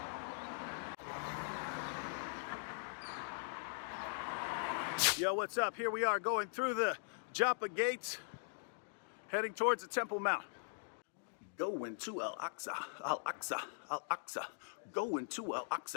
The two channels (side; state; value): right; silent; digital silence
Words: Yo, what's up? Here we are going through the Joppa gates, heading towards the Temple Mount. Going to Al-Aqsa, Al-Aqsa, Al-Aqsa. Going to